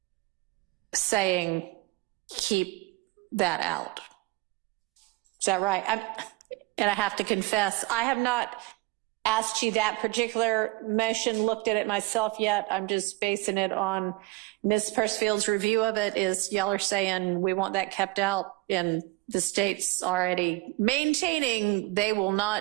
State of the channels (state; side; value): quieter; left; 21.4 dB